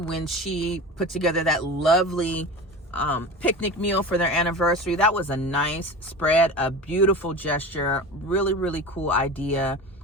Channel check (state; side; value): normal; both; correlation 0.31